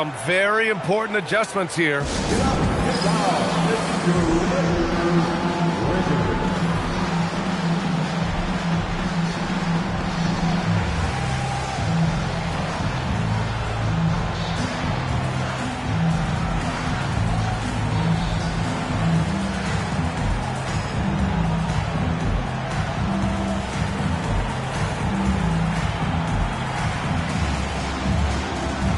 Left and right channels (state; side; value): identical; both; correlation 1.00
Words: very important adjustments here.